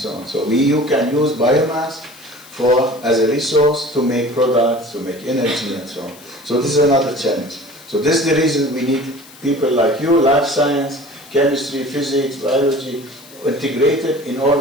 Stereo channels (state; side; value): noise; left; hiss, 22 dB below the sound